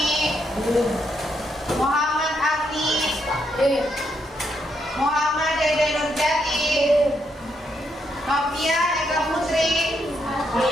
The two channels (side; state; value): both; normal; correlation 0.78